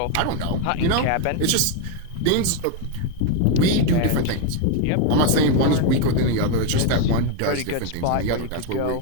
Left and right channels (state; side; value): different; both; correlation 0.01